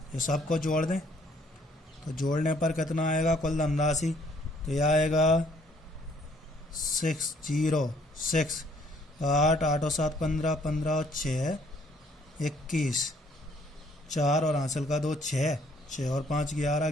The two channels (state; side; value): normal; both; correlation 0.63